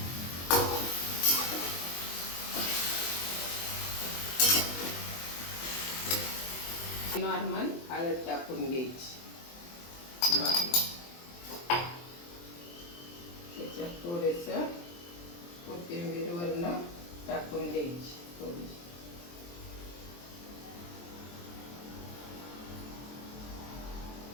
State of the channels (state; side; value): late; right; 23 ms